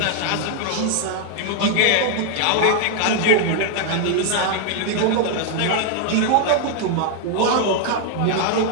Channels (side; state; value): both; different; correlation 0.00